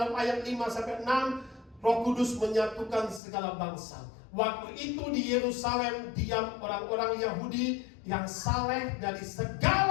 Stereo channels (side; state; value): right; drops out; at 3.2 s